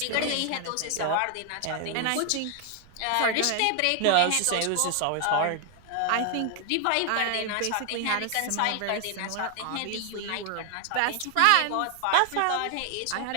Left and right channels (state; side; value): different; both; correlation 0.00